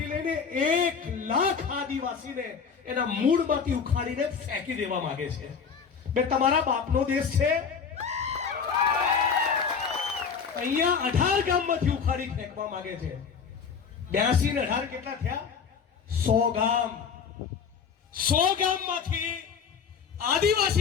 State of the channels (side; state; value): right; quieter; 6.3 dB